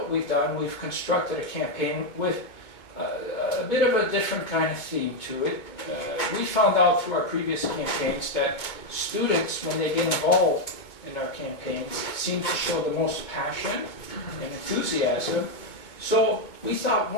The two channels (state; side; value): late; right; 2.2 ms